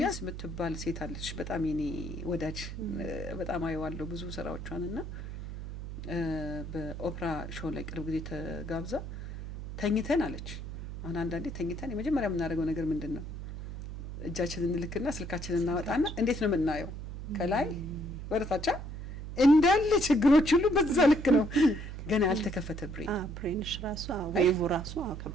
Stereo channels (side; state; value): right; noise; hum, 8 dB below the sound